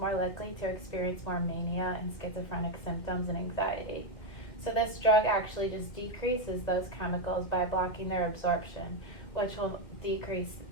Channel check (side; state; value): right; late; 2.3 ms